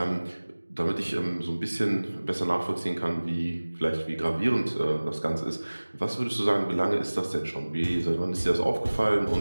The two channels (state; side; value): inverted; both; correlation -1.00